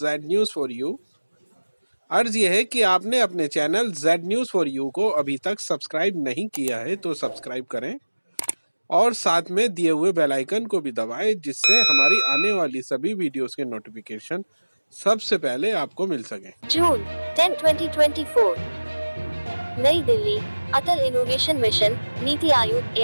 न्यूज़ फॉर यू। अर्ज़ यह है कि आपने अपने channel Z news for you को अभी तक सब्सक्राइब नहीं किया है तो सब्सक्राइब करें और साथ में दिए हुए बेल आइकन को भी दबाएं, जिससे हमारी आने वाली सभी वीडियोस के नोटिफिकेशन सबसे पहले आपको मिल सके। जून 10, 2024, नई दिल्ली। अटल innovation mission, NITI Aayog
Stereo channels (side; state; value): both; inverted; correlation -1.00